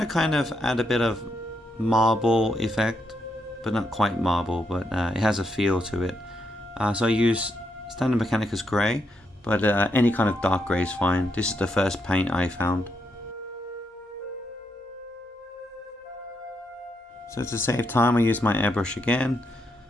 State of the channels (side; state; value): both; normal; correlation 0.80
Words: kind of add a bit of marble effect, but not quite marble, but it has a feel to it. So I use standard Mechanicus grey, but any kind of dark grey is fine. This is the first paint I found. So to save time, I use my airbrush again,